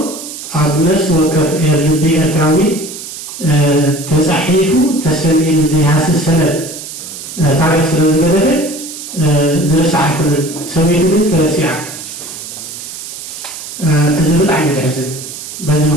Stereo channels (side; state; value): right; noise; hiss, 11 dB below the sound